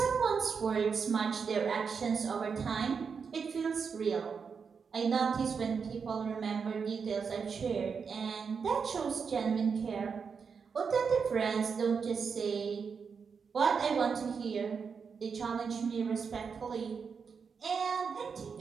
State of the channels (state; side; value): quieter; left; 5.9 dB